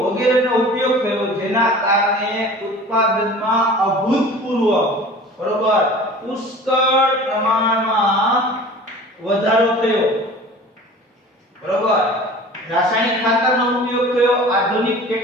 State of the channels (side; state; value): both; normal; correlation 0.42